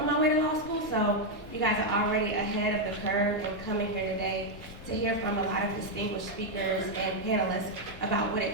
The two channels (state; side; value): normal; both; correlation 0.01